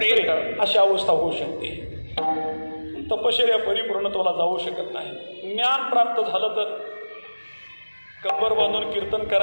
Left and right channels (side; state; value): both; inverted; correlation -1.00